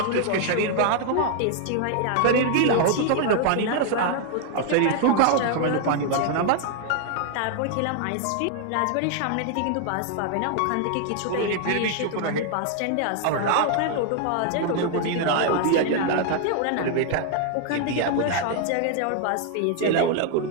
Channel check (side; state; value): both; different; correlation 0.00